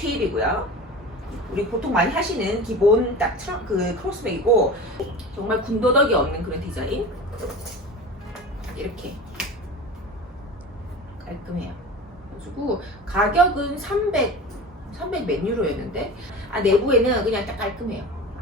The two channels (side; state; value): both; normal; correlation 0.33